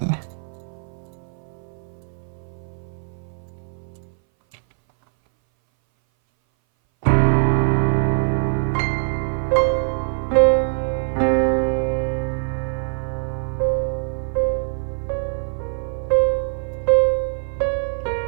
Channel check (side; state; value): left; silent; 59 dB below the other